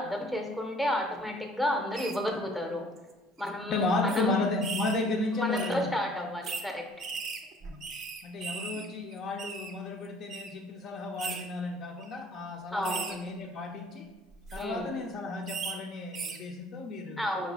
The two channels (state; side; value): normal; both; correlation 0.56